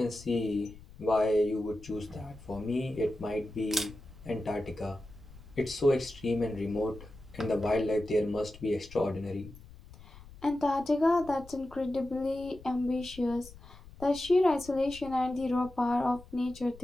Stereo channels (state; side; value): noise; left; rumble, 19 dB below the sound